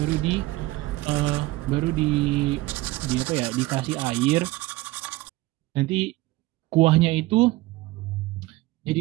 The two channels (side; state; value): left; quieter; 19.3 dB